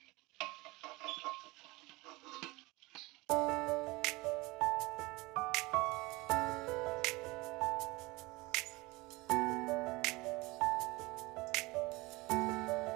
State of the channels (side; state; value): left; quieter; 22.9 dB